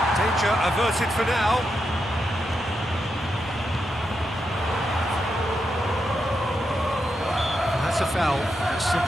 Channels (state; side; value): normal; both; correlation 0.85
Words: Danger averted for now. That's a foul. A